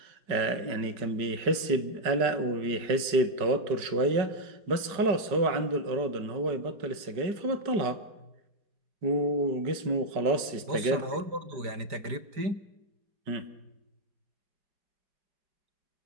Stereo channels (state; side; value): late; left; 5.2 ms